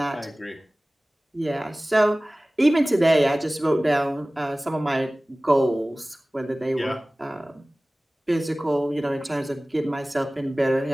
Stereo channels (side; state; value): both; normal; correlation 0.98